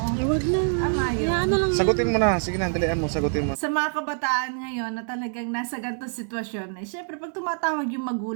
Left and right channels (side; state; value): left; silent; 60 dB below the other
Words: Huwag na. Tama yun. Hayaan na lang. Sagutin mo na. Sige na, dalian mo. Sagutin mo. Sa mga kabataan ngayon na talagang nasa ganitong sitwasyon, eh, syempre pag tumatawag yung